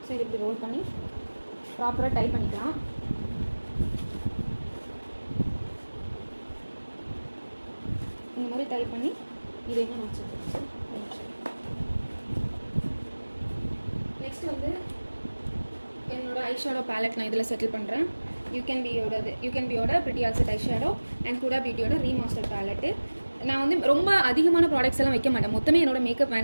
ஸோ இது இப்படி ரோல் பண்ணி ப்ராப்பராக டைப் பண்ணிக்கலாம். இந்த மாதிரி டைப் பண்ணி இதையும் நான் வச்சுருக்கேன். நெக்ஸ்ட் வந்து என்னோட ஐஷேடோ பேலட் நான் இதில் செட்டில் பண்ணுறேன். யூகேன்பியோட pretty all set eyeshadow and Huda பியூட்டியோட ரீமாஸ்டர் பேலட்டு. நான் வந்து ரொம்ப அதிகமான ப்ராடக்ட்ஸ் எல்லாம் வைக்க மாட்டேன். மொத்தமே என்னோட மேக்கப்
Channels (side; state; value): both; inverted; correlation -1.00